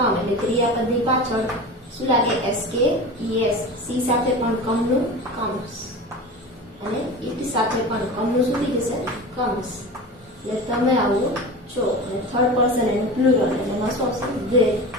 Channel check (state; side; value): normal; both; correlation 0.31